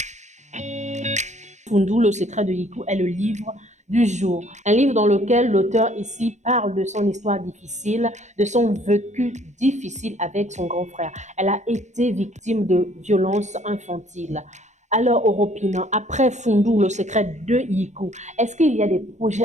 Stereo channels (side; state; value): left; late; 0.34 ms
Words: Fundul, le secret de Yiku est le livre du jour. Un livre dans lequel l'auteur ici parle de son histoire difficile, de son vécu difficile avec son grand frère. Elle a été victime de violences infantiles. Alors, Oropina, après Fundou, le secret de Yiku, est-ce qu'il y a des